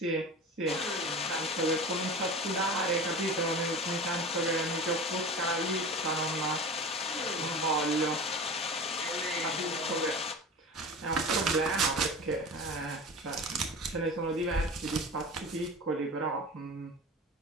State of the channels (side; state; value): both; normal; correlation 0.33